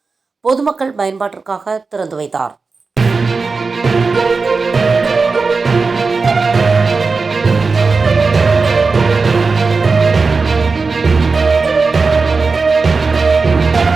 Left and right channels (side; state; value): left; quieter; 4.3 dB